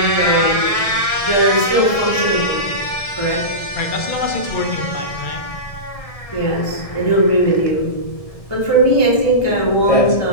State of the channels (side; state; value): right; late; 1.6 ms